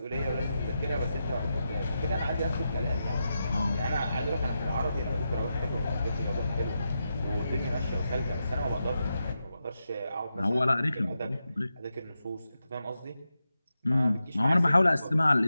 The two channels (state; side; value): inverted; both; correlation -0.88